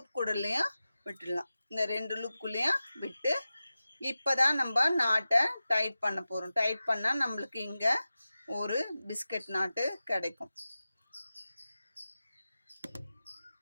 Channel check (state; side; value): inverted; both; correlation -0.95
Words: கூடலையும் விட்டுடலாம். இந்த 2 லூப்புக்குள்ளேயும் விட்டு இப்போ தான் நம்ம நாட்டை டைட் பண்ண போகிறோம். டைட் பண்ணால் நம்மளுக்கு இங்கே ஒரு பிஸ்கட் நாட்டு கிடைக்கும்.